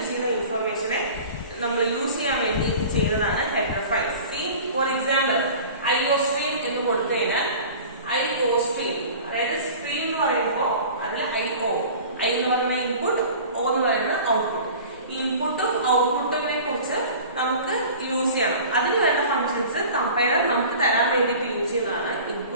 ചെയ്യുന്ന ഇൻഫർമേഷനെ നമ്മൾ യൂസ് ചെയ്യാൻ വേണ്ടി ചെയ്യുന്നതാണ് header files. See, for example, IOStream എന്ന് കൊടുത്തു കഴിഞ്ഞാൽ IOStream, അതായത് സ്ട്രീം എന്ന് പറയുമ്പോൾ അതിൽ IO, I എന്ന് പറയുന്ന ഇൻപുട്ട്, O എന്ന് പറയുന്ന ഔട്ട്പുട്ട്. ഇൻപുട്ടും ഔട്ട്പുട്ടിനെ കുറിച്ച് നമുക്ക് യൂസ് ചെയ്യണം. അതിന് വേണ്ട ഫംഗ്ഷൻസ് കമ്പൈലർ നമുക്ക് തരാൻ വേണ്ടിയിട്ട് യൂസ് ചെയ്യുന്നതാണ്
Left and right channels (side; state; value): both; inverted; correlation -0.40